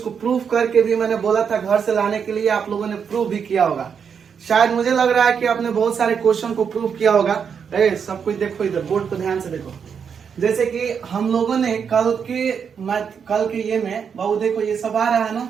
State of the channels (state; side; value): quieter; left; 6.9 dB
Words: प्रूफ करके भी मैंने बोला था घर से लाने के लिए, आप लोगों ने प्रूफ भी किया होगा। शायद मुझे लग रहा है कि आपने बहुत सारे क्वेश्चन को प्रूफ किया होगा। सब कुछ देखो, इधर बोर्ड पर ध्यान से देखो। जैसे कि हम लोगों ने कल के ये में बाबू देखो, ये सब आ रहा है ना